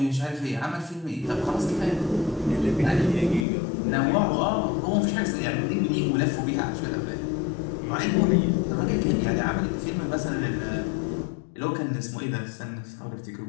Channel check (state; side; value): drops out; right; at 3.5 s